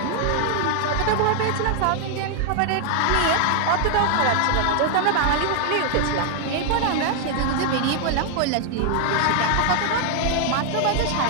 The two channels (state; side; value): different; both; correlation 0.00